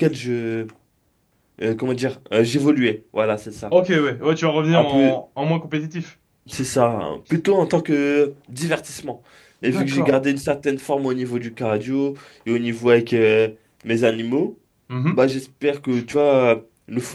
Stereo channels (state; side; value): identical; both; correlation 1.00